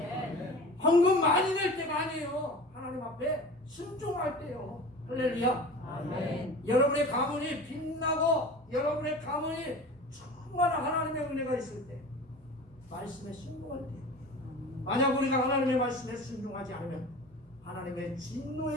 헌금 많이 낼 때가 아니에요. 하나님 앞에 순종할 때요. 할렐루야. 아멘. 여러분의 가문이 빛나고 여러분의 가문이 충만한 하나님의 은혜가 있을 때, 말씀에 순종할 때, 만약 우리가 하나님의 말씀에 순종하지 않으면 하나님의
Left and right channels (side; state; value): both; normal; correlation 0.37